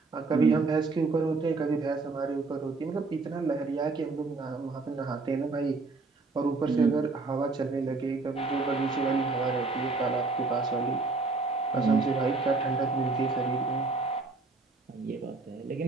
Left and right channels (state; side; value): quieter; left; 3.8 dB